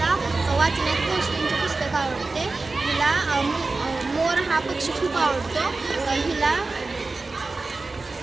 वाचण्यात गोष्टींचे पुस्तक आवडते. हिला मोर हा पक्षी खूप आवडतो. हिला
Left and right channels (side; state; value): left; quieter; 3.6 dB